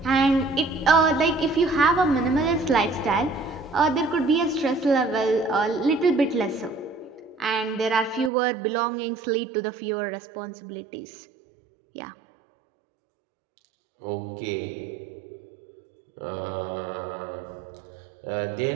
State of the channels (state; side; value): drops out; left; at 8.3 s